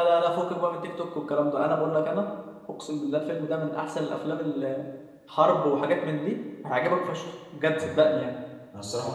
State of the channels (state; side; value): identical; both; correlation 1.00